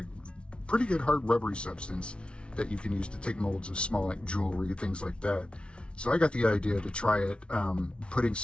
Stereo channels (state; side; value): late; right; 0.058 ms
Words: pretty good hard rubbery substance that you can use to take molds of small, like jewelry, things like that. So I got the idea to try it, putting